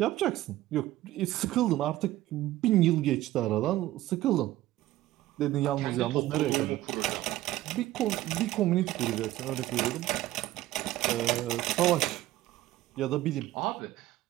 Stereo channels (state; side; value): quieter; left; 15.5 dB